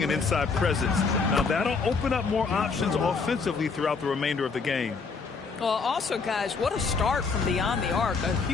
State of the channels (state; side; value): quieter; right; 4.8 dB